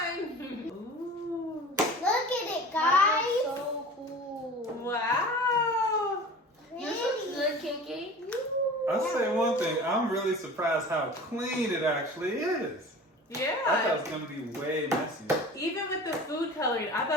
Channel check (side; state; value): both; normal; correlation 0.39